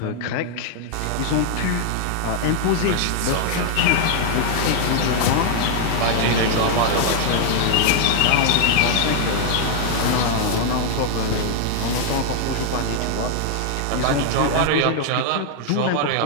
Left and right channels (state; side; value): different; both; correlation 0.00